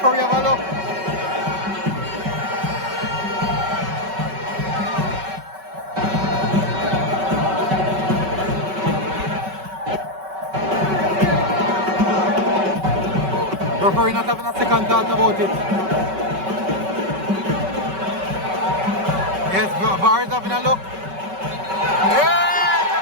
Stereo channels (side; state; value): left; late; 5.3 ms